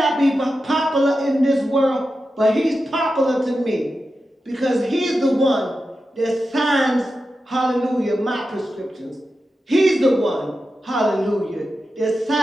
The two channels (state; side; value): normal; both; correlation 0.91